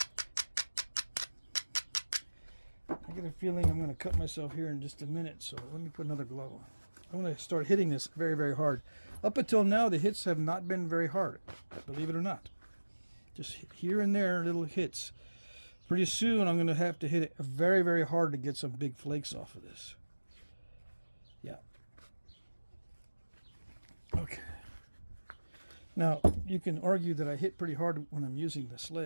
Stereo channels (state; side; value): inverted; both; correlation -1.00